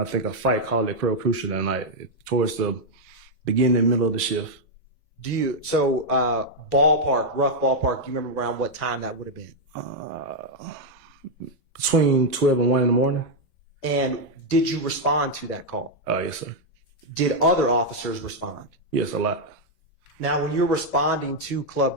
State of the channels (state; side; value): normal; both; correlation -0.01